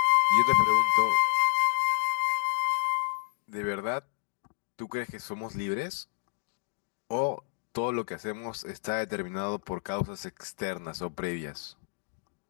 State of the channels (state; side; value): silent; right; digital silence